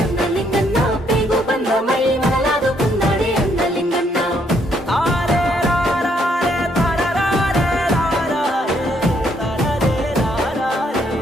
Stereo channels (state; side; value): normal; both; correlation 0.71